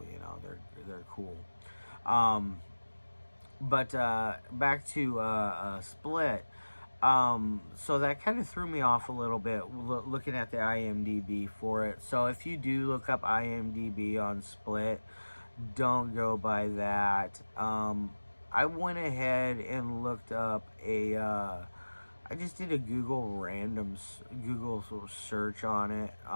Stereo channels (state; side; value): inverted; both; correlation -1.00